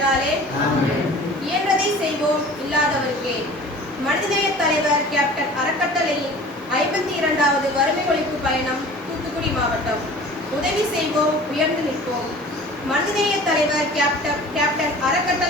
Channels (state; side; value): normal; both; correlation 0.44